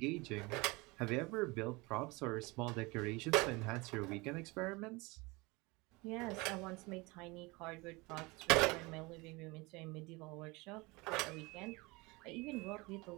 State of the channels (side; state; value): left; quieter; 24.8 dB